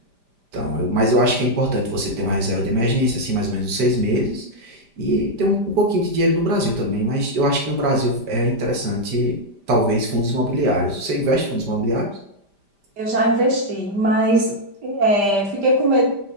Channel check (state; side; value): late; left; 5.0 ms